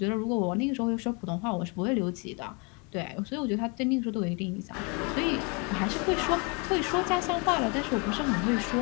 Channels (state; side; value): quieter; right; 32.5 dB